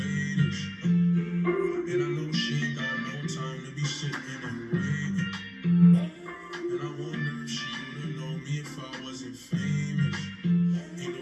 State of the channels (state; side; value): identical; both; correlation 1.00